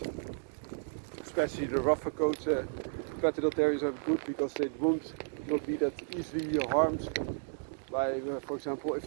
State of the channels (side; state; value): left; silent; digital silence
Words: especially the rougher coat Patterdale Terriers are good because they won't not be that easily harmed by, for example, if